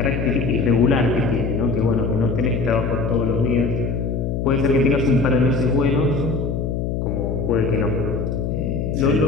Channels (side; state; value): left; noise; hum, 1 dB below the sound